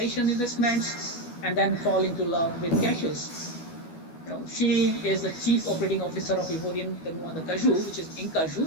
investments, and then fall into love with cashews. She is the chief operating officer of Ivorian the Cashew, which is Cashew.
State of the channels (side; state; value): right; late; 12 ms